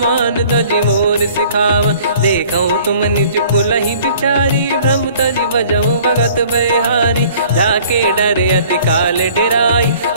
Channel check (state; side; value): inverted; both; correlation -0.53